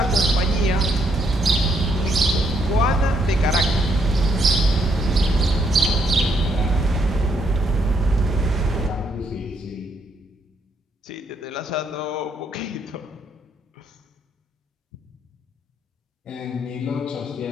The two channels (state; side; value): normal; both; correlation 0.73